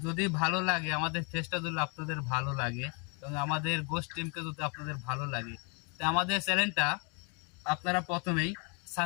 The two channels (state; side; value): quieter; right; 34.3 dB